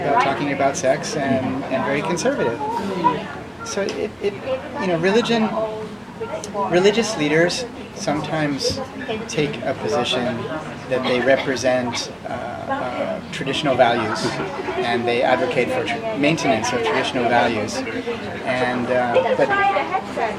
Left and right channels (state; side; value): identical; both; correlation 1.00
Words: talking about sex and very conservative. So religious leaders sometimes take a position that they represent traditional values, and they advocate for maintenance of traditional values. And